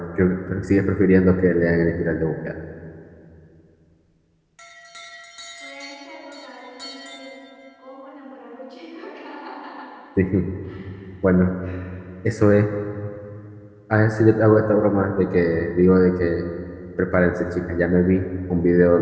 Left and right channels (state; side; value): identical; both; correlation 1.00